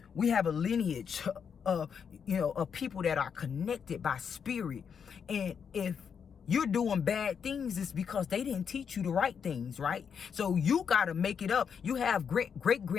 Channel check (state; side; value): quieter; right; 7.0 dB